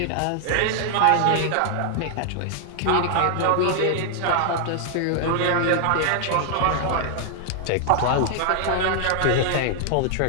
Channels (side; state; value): both; different; correlation 0.00